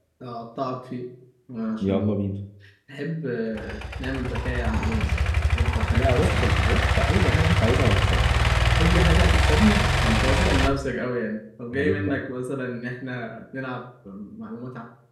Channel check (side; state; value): both; identical; correlation 1.00